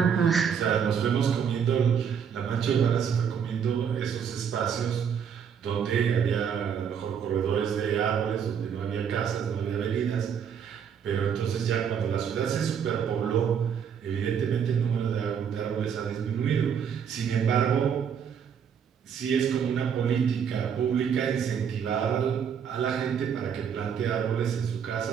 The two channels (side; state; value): left; quieter; 7.6 dB